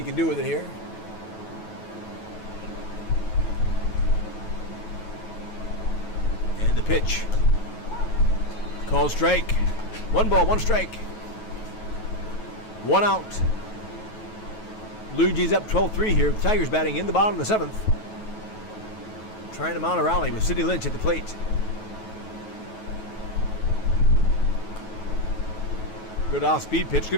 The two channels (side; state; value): right; late; 9.2 ms